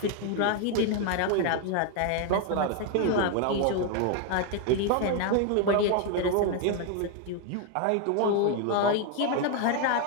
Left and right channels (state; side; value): different; both; correlation 0.01